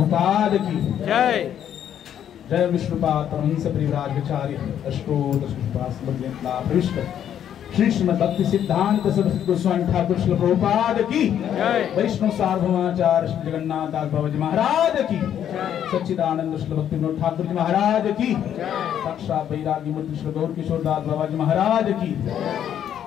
की जय। जय विष्णुपाद वंश परिवार विचार्य अष्टोत्तर श्री कृष्णपाद समृद्ध मिथिला पृष्ठ श्री श्रीमद् भक्ति सिद्धांत सरस्वती गोस्वामी ठाकुर श्रील प्रभुपाद की, वैष्णव सार्वभौमाचार्य श्री जगन्नाथ दास बाबा जी महाराज की, सच्चिदानंद श्री भक्ति विनोद ठाकुर जी महाराज की, साक्षात वैरागी मूर्ति श्री गौर किशोर दास बाबा जी महाराज की,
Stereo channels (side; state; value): right; quieter; 9.8 dB